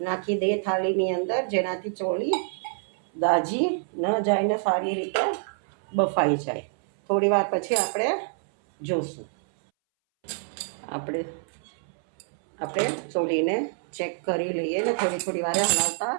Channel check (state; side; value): silent; left; 61 dB below the other